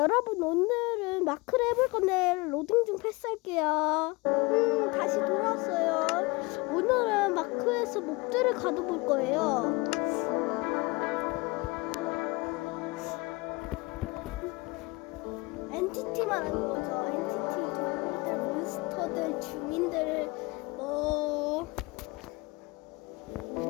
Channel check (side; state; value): right; quieter; 25.0 dB